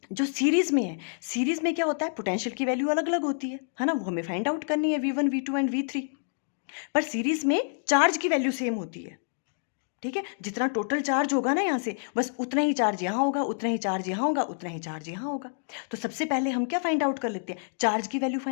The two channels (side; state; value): right; silent; digital silence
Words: जो सीरीज में है, सीरीज में क्या होता है, पोटेंशियल की वैल्यू अलग अलग होती है ना, वो हमें फाइंड आउट करनी है V1 V2 एंड V3। पर सीरीज में चार्ज की वैल्यू सेम होती है, ठीक है। जितना टोटल चार्ज होगा ना यहाँ से, बस उतना ही चार्ज यहाँ होगा, उतना ही चार्ज यहाँ होगा, उतना ही चार्ज यहाँ होगा। तो सबसे पहले हम क्या फाइंड आउट कर लेते हैं, चार्ज की वैल्यू